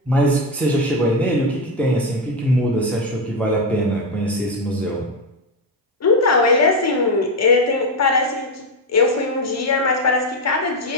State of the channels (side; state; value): both; normal; correlation 0.10